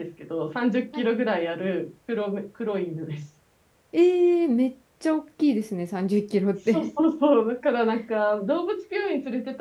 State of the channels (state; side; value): identical; both; correlation 1.00